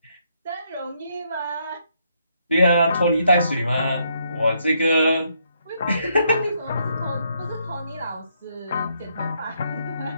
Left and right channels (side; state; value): both; inverted; correlation -0.74